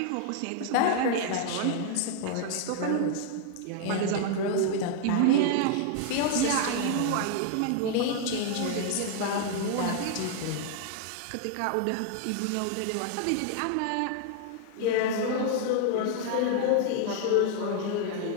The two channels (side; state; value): both; different; correlation 0.00